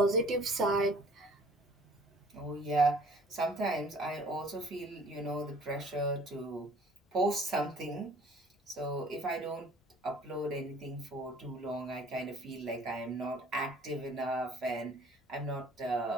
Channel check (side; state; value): both; normal; correlation 0.53